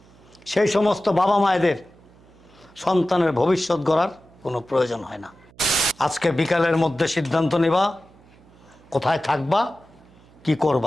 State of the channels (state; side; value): noise; right; hum, 27 dB below the sound